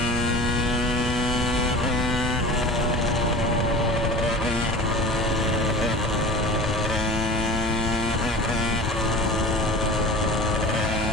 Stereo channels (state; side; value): normal; both; correlation 0.37